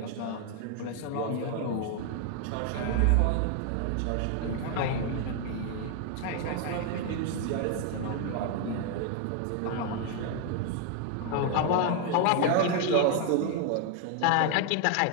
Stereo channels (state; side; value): different; both; correlation 0.00